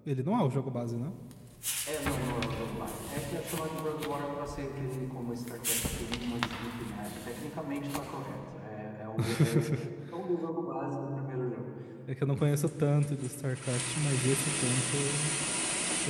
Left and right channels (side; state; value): both; identical; correlation 1.00